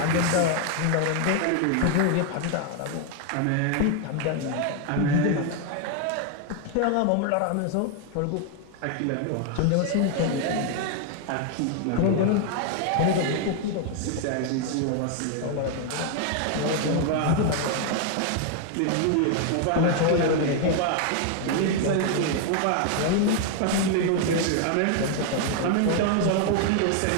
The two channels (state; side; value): different; both; correlation 0.00